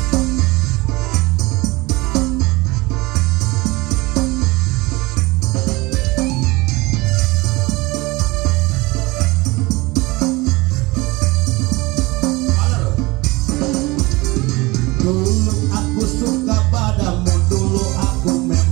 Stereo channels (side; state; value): left; quieter; 22.8 dB